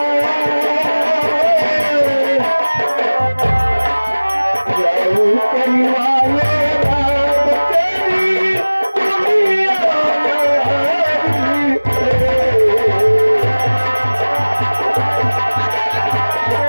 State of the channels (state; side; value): inverted; both; correlation -1.00